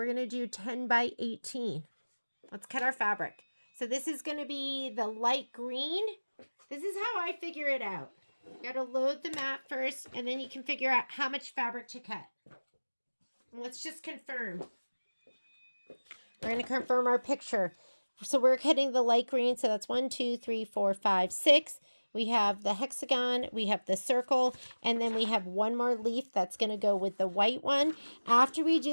going to do 10 by 18. Let's cut our fabric. So this is going to be the light green. This is how I figure it out. You got to load the mat first, and then you can figure out how much fabric to cut. And let's just confirm. We're going to confirm our picture. So we're cutting the light green. So that's 1, 2, 3, 4, 5, 6. We have the hexagon, we have the circle, and then we have one more leaf that's going to go with the white one. After we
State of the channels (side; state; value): both; inverted; correlation -1.00